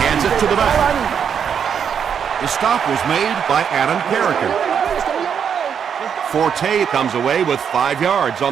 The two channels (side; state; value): left; quieter; 7.6 dB